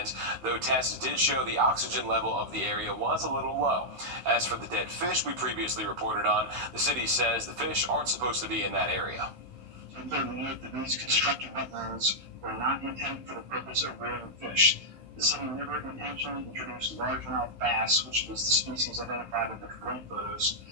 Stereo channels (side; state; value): left; late; 15 ms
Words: though tests did show the oxygen level of the area was a little low. As for the dead fish we previously reported on, the city says the fish aren't supposed to be in that area. It's important to note that these constructed wetlands were not intended for the purpose of rearing fish. The city never intentionally introduced largemouth bass, which was the species identified in the drone photos,